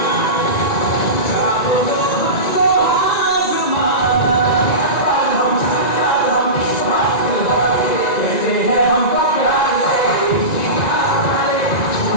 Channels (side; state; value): right; late; 1.9 ms